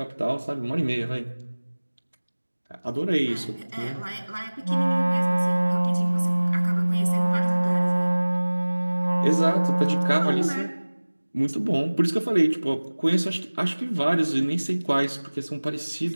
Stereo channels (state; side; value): inverted; both; correlation -1.00